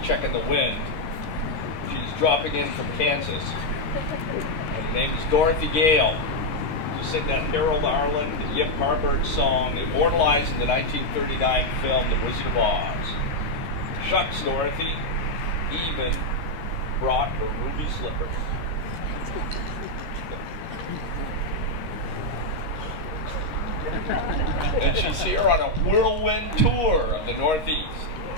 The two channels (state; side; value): late; right; 13 ms